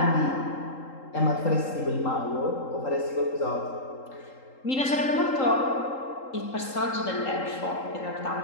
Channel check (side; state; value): right; late; 3.8 ms